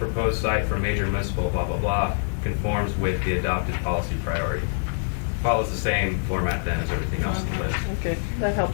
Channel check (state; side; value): silent; right; 58 dB below the other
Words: site for major municipal blah, blah, blah, conforms with the adopted policy priority. Follows the same format then as everything else in the list. Okay, that